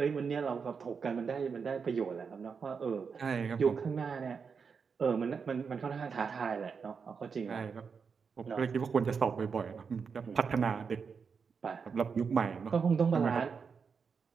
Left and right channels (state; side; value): quieter; left; 5.8 dB